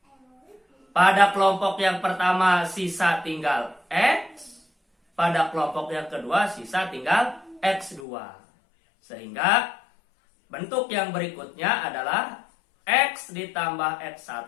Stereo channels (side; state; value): right; drops out; at 8.1 s